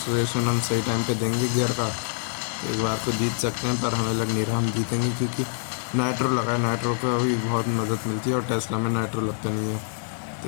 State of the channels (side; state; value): right; silent; digital silence